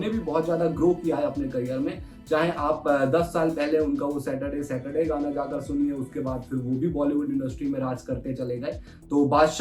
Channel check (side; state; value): both; identical; correlation 1.00